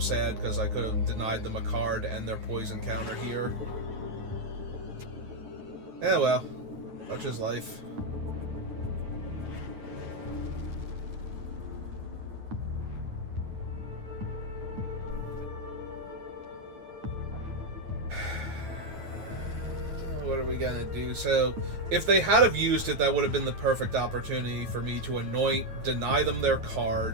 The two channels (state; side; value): late; left; 9.4 ms